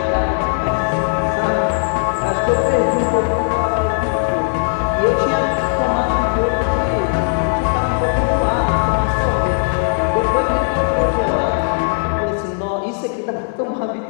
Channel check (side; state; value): right; silent; 61 dB below the other